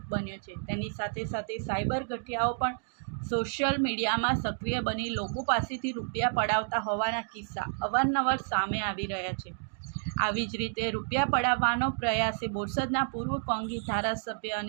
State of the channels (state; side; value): silent; left; digital silence